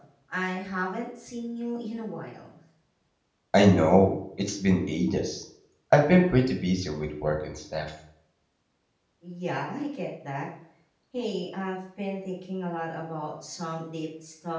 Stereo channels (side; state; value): both; identical; correlation 1.00